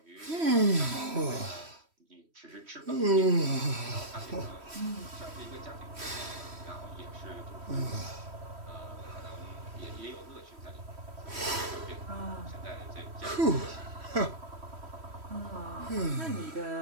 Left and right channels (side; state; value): left; late; 3.1 ms